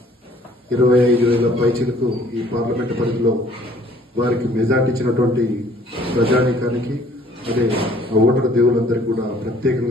పైచీలకు ఈ పార్లమెంటు పరిధిలో వారికి మెజార్టీ ఇచ్చినటువంటి ప్రజానీకానికి, అదే ఆ ఓటర్ దేవులందరికీ కూడా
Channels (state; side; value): normal; both; correlation 0.57